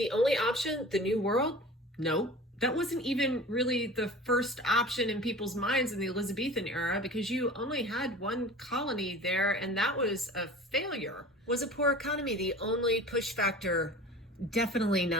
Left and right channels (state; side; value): normal; both; correlation 0.39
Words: only option the New World? No. That wasn't even really the first option in people's minds in the Elizabethan era, because you only had one colony there, and that was a failure. Was a poor economy the only push factor? Definitely